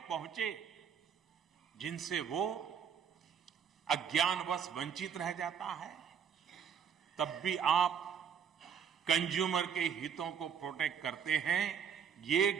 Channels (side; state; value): left; quieter; 7.6 dB